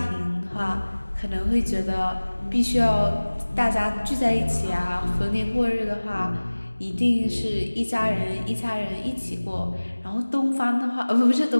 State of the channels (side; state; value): both; inverted; correlation -1.00